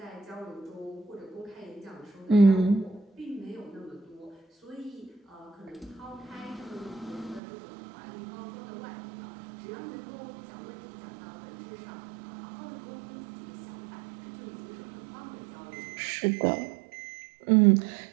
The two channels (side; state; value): left; drops out; at 7.4 s